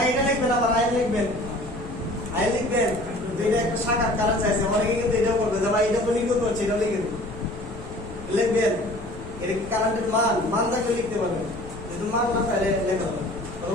এটা লিখবেন, আবার আই লিখবেন, আই লিখবেন। তো এটা একটা শাখার কারেন্ট চাইছে, অনেকে কিন্তু এটাও করবে যে ভাই এটা তো নির্গত হচ্ছে, এটা লিখে দিন, লিখবেন। এটা কি কারেন্টের মান থাকলে লিখতে পারবেন, যেহেতু মান না তাহলে লেখা হবে। তো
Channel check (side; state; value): left; noise; rumble, 14 dB below the sound